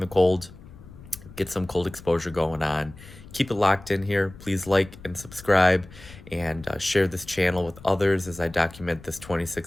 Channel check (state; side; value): noise; left; rumble, 19 dB below the sound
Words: cold, get some cold exposure going on. Keep it locked in here. Please like and subscribe, and share this channel with others as I document this